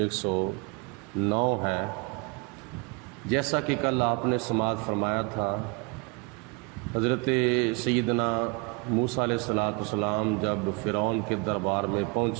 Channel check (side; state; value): left; quieter; 31.3 dB